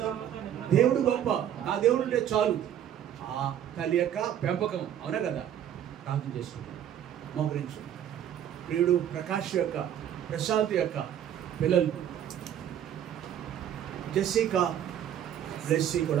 దేవుడు గొప్ప, నా దేవుడు ఉంటే చాలు. ఆ తల్లి యొక్క పెంపకం, అవునా కదా? ప్రార్థన చేసుకుంటాం, మోకరించు. ప్రియుడు ప్రకాష్ యొక్క, ప్రశాంత్ యొక్క పిల్లలు జెస్సికా, బ్లెస్సీ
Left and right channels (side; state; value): left; quieter; 10.2 dB